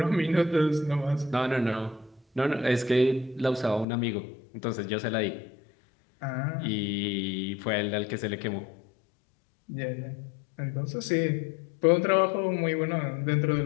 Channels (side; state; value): right; drops out; at 3.9 s